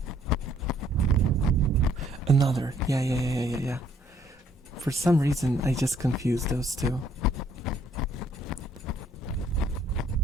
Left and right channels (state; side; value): normal; both; correlation 0.65